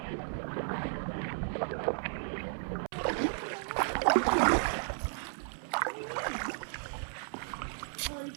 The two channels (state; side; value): silent; left; 55 dB below the other